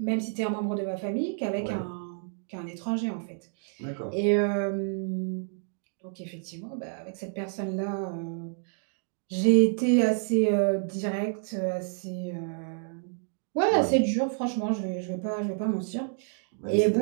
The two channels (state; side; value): silent; left; 59 dB below the other